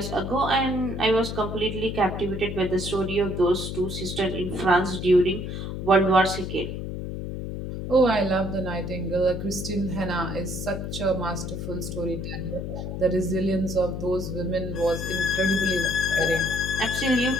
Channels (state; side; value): noise; left; hum, 5 dB below the sound